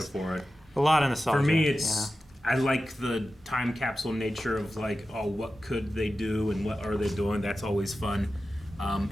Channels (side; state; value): both; normal; correlation 0.93